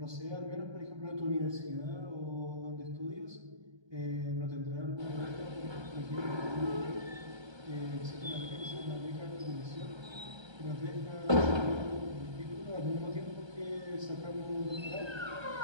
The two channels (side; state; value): left; late; 1.3 ms